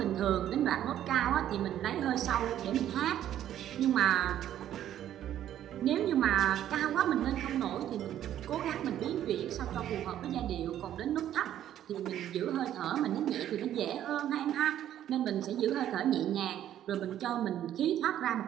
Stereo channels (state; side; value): quieter; left; 11.4 dB